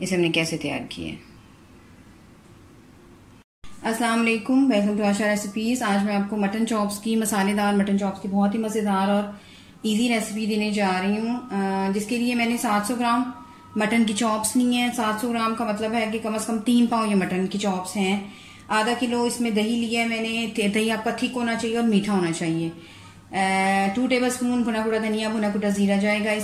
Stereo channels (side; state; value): both; identical; correlation 1.00